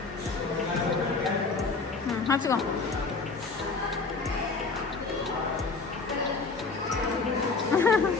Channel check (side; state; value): right; quieter; 4.1 dB